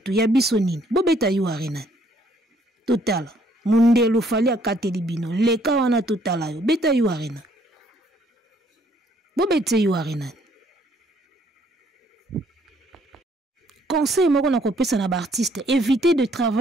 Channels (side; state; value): both; normal; correlation 0.65